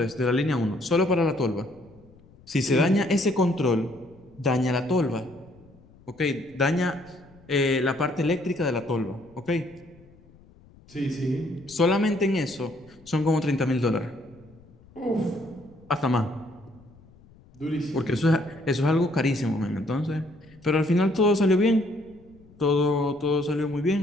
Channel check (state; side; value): noise; left; rumble, 26 dB below the sound